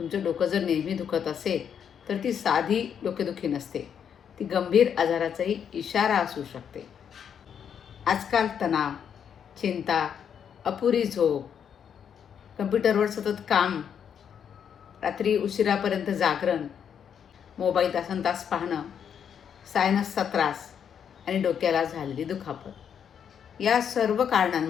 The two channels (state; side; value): quieter; right; 8.0 dB